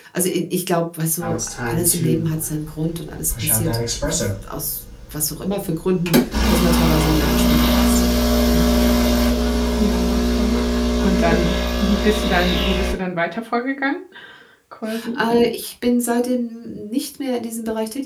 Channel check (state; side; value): identical; both; correlation 1.00